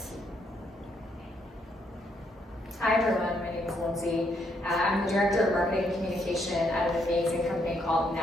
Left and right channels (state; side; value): normal; both; correlation 0.74